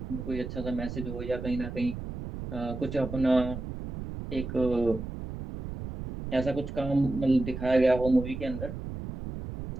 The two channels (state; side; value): noise; right; rumble, 8 dB below the sound